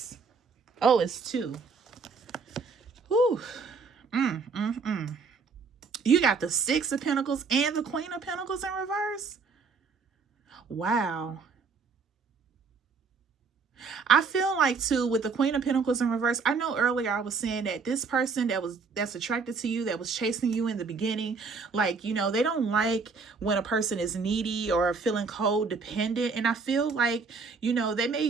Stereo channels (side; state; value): left; quieter; 4.9 dB